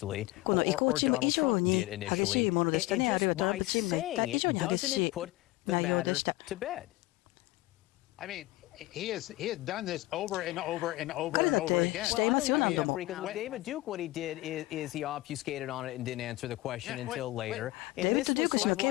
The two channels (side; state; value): right; quieter; 19.2 dB